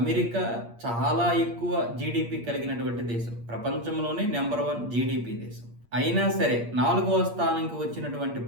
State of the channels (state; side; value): late; left; 8.6 ms